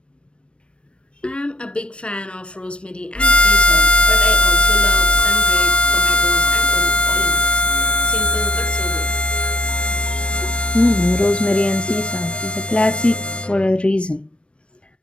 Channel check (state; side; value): late; right; 0.059 ms